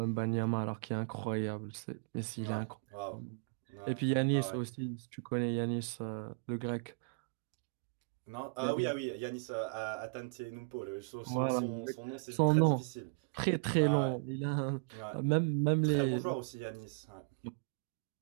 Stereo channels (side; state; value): left; quieter; 36.1 dB